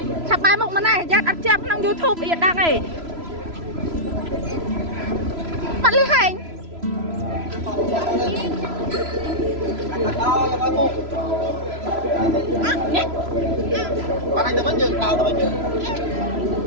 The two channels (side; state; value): left; late; 3.0 ms